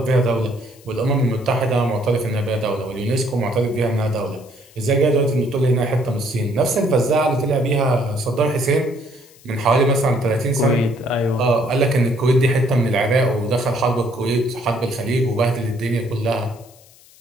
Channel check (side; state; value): left; noise; hiss, 26 dB below the sound